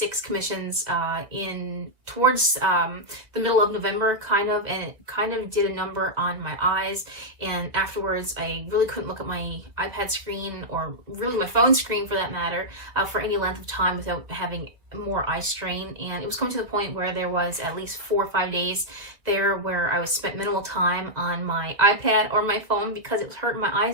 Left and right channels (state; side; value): late; left; 1.8 ms